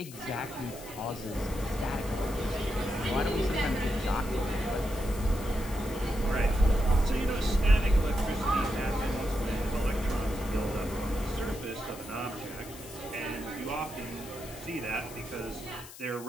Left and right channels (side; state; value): left; noise; hiss, 16 dB below the sound